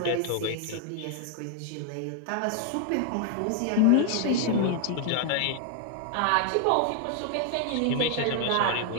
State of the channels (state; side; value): different; both; correlation 0.00